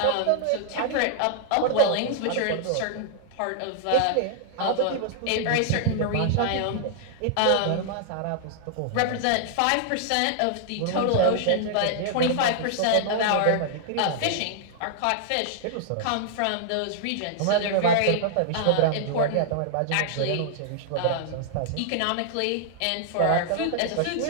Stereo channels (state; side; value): different; both; correlation -0.01